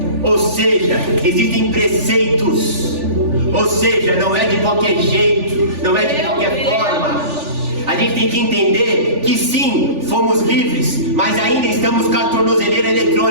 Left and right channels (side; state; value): left; late; 3.4 ms